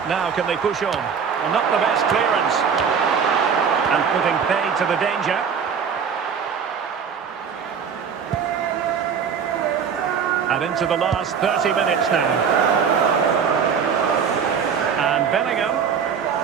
now can they push on? Well, not the best clearance. And putting paid to the danger. And into the last 30 minutes now. And Bellingham.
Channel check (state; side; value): quieter; left; 6.8 dB